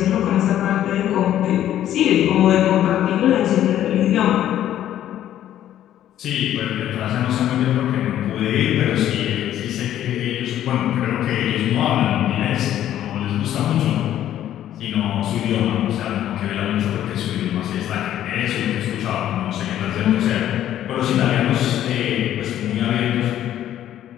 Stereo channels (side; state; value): right; quieter; 11.8 dB